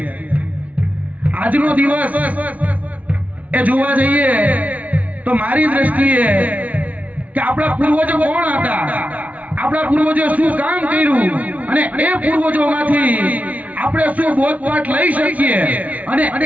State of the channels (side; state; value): left; late; 0.070 ms